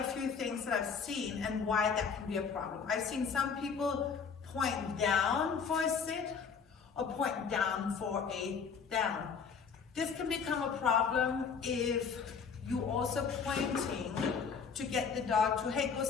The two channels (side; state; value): right; quieter; 6.0 dB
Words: few things that I've seen and why that can be a problem. I've seen some people point down for a sit or point down for a down. This can become a problem if you also pointing to get the dog to, hey, go